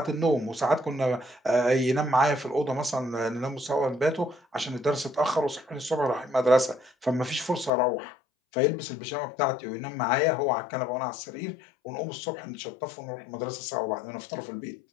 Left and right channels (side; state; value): right; drops out; at 7.7 s